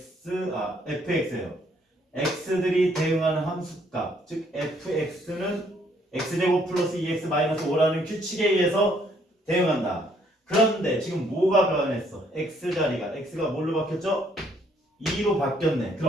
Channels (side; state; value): both; normal; correlation 0.67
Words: x들이 대응하는 함수값. 즉 fx는 x제곱 플러스 2x 마이너스 5라는 규칙에 의해서 대응한다. 그런데 지금 뭐가 변했어? x 자리가 x가 뭘로 바뀌었죠? 2로 바뀌었네.